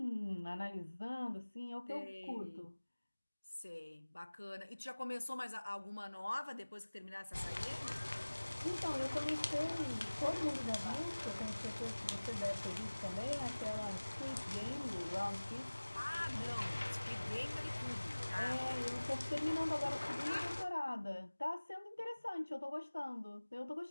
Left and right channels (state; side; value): inverted; both; correlation -1.00